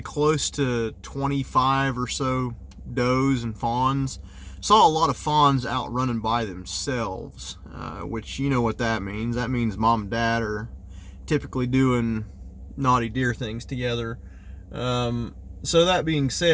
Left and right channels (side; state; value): both; identical; correlation 1.00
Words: close to 25 or so does and fawns. Saw a lot of fawns out running by themselves, which you know what that means. That means mom and dad are typically doing naughty deer things together. So that being